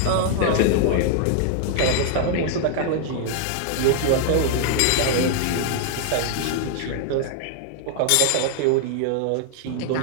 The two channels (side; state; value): both; different; correlation 0.00